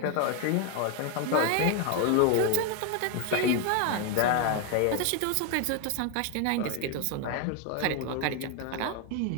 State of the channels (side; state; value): both; different; correlation 0.01